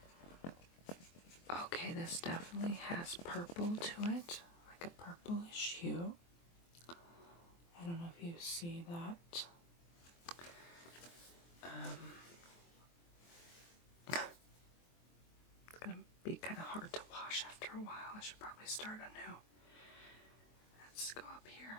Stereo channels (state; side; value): late; right; 23 ms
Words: Okay, this definitely has purple to it, like a purplish hue. I don't know if you see that. It's gonna be kind of hard to wash after a while. I should probably start anew. Let's go up